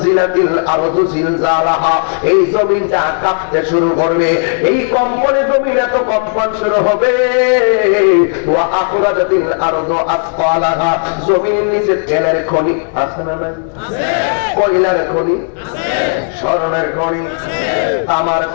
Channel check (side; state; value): right; silent; digital silence